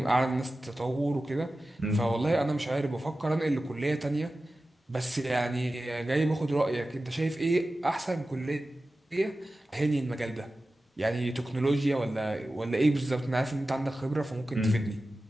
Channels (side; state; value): both; normal; correlation 0.95